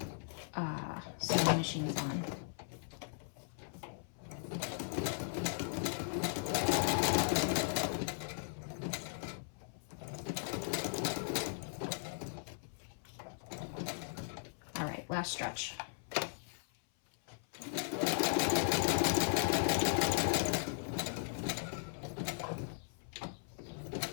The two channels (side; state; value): right; silent; 52 dB below the other